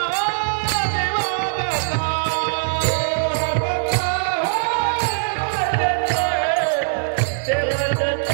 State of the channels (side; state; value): left; silent; digital silence